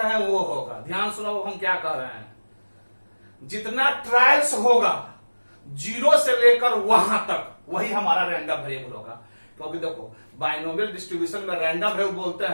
हैं वो होगा। ध्यान सुनो हम क्या कह रहे हैं, जितना ट्रायल्स होगा 0 से लेकर वहां तक वही हमारा रैंडम वेरिएबल होगा। क्योंकि देखो बाइनोमियल डिस्ट्रीब्यूशन में रैंडम वेरिएबल बोलते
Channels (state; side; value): inverted; both; correlation -1.00